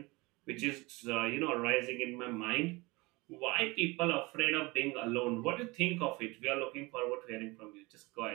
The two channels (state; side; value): quieter; left; 24.0 dB